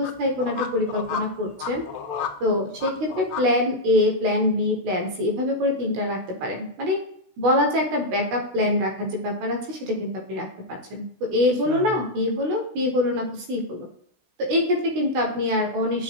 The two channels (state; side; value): late; left; 16 ms